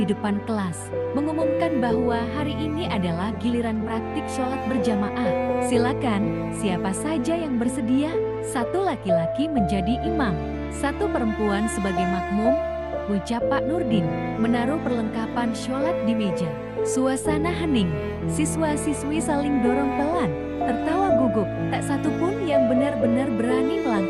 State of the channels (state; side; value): identical; both; correlation 1.00